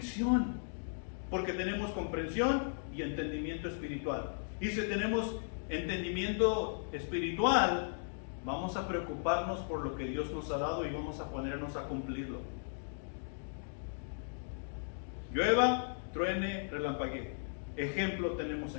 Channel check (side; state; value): right; silent; digital silence